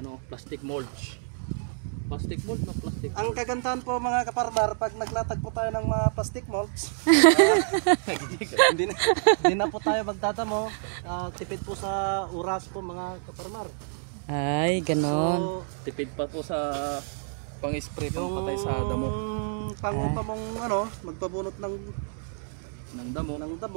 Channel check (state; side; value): silent; left; 59 dB below the other